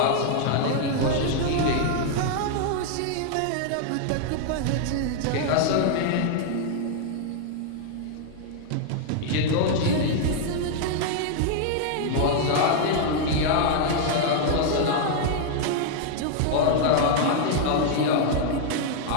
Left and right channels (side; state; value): both; different; correlation 0.00